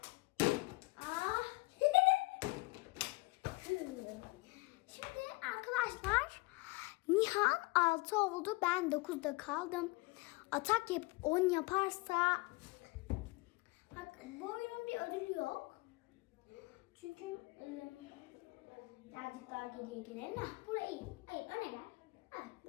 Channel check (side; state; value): right; quieter; 24.4 dB